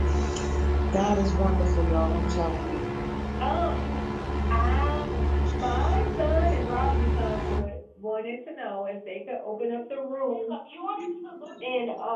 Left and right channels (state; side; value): identical; both; correlation 1.00